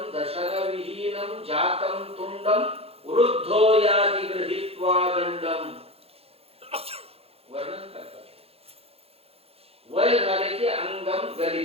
दशन विहीनम जातम तुंडम वृद्धो याति गृहीत्वा दंडम. वर्णन करतात. वय झाले की अंगम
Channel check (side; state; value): left; late; 0.29 ms